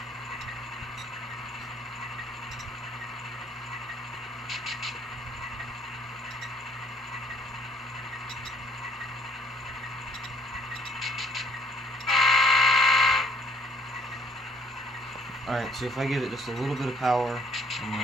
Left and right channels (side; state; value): both; normal; correlation 0.62